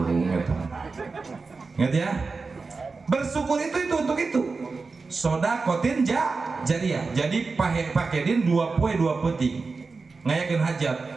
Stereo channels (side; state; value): left; quieter; 4.2 dB